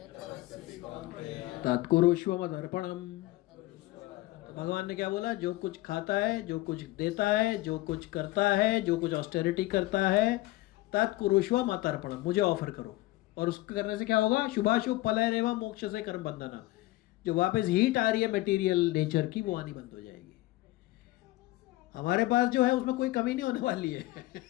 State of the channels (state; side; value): quieter; right; 18.5 dB